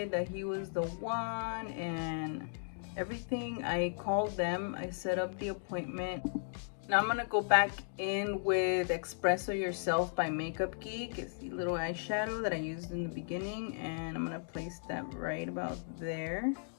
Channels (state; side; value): silent; right; digital silence